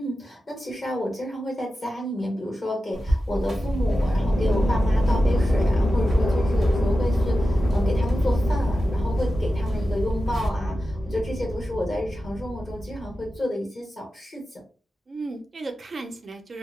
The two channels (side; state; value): both; normal; correlation 0.92